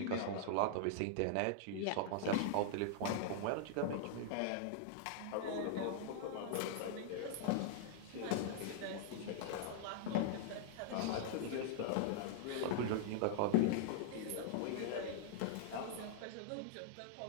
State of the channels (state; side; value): different; both; correlation -0.01